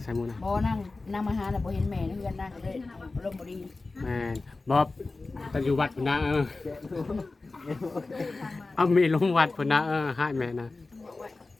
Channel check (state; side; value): quieter; right; 3.5 dB